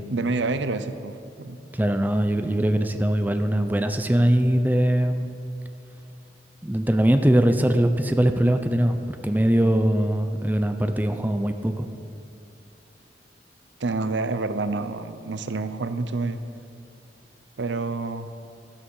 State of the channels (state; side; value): normal; both; correlation 0.88